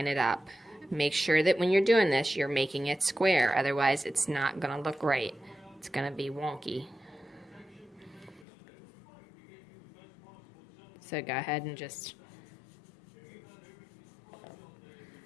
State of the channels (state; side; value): drops out; right; at 8.5 s